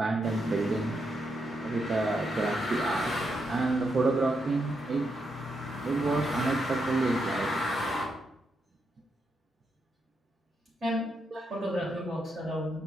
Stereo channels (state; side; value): normal; both; correlation 0.82